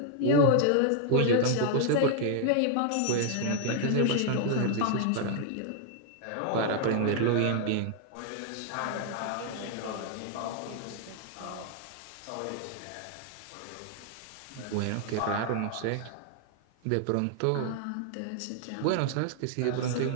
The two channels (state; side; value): different; both; correlation 0.00